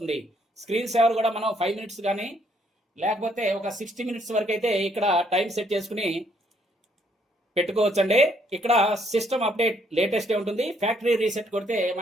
స్క్రీన్ సేవర్ కూడా మనం 5 minutes కానీ లేకపోతే ఒక 60 minutes వరకు అయితే ఇక్కడ టైం సెట్ చేసుకుని పెట్టుకోవచ్చండి. ఇక్కడ సిస్టమ్ అప్డేట్ లేటెస్టే ఉంటుంది. ఫ్యాక్టరీ రీసెట్ కొడితే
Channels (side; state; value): both; normal; correlation 0.69